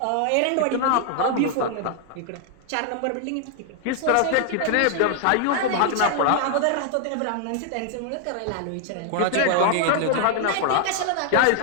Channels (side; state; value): both; different; correlation 0.00